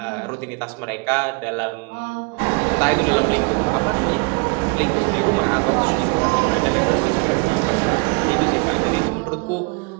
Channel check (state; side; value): quieter; left; 32.0 dB